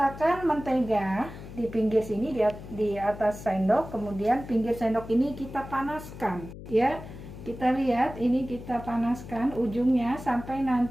mentega di pinggir sini, di atas sendok, kemudian pinggir sendok ini kita panaskan, ya. Kita lihat, ini kita panaskan ujungnya sampai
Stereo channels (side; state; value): left; noise; hum, 13 dB below the sound